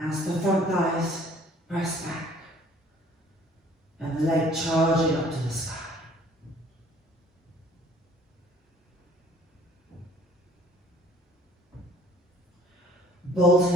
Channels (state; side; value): normal; both; correlation 0.55